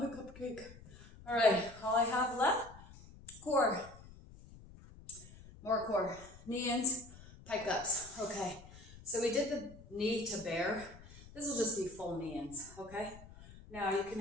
cupcake. All right, all I have left, core. More core. Knee-ins, pike-ups. Okay, so we did the knee to bear. This will just be full knee-ins, okay? Now you can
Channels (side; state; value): left; noise; rumble, 19 dB below the sound